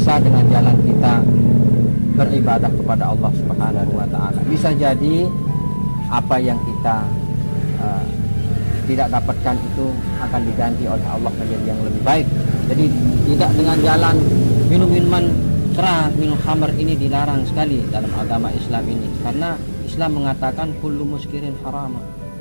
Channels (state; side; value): inverted; both; correlation -1.00